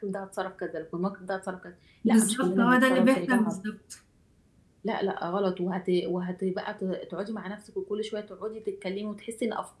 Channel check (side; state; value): both; identical; correlation 1.00